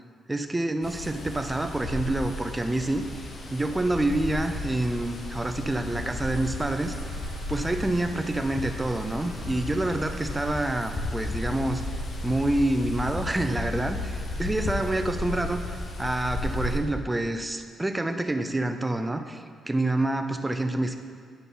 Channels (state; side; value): normal; both; correlation 0.90